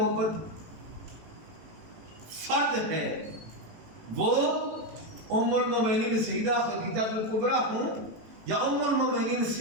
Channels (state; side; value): late; left; 18 ms